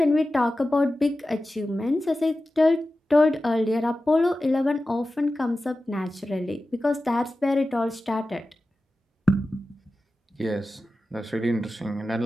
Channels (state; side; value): normal; both; correlation 0.94